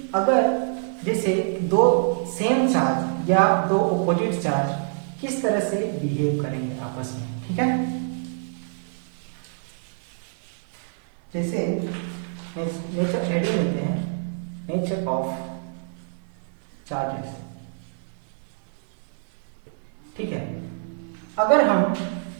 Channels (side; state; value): left; silent; 61 dB below the other